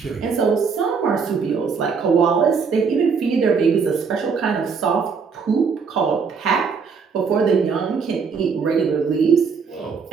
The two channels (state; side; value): quieter; left; 5.6 dB